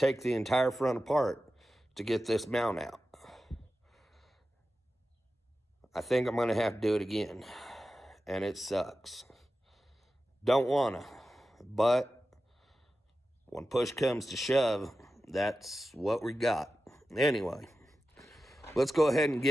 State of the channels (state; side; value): normal; both; correlation 0.93